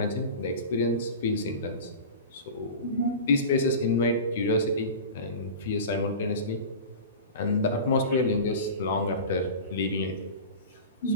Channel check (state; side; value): inverted; both; correlation -0.32